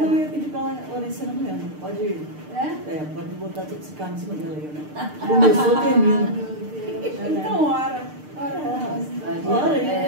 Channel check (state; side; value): late; left; 6.6 ms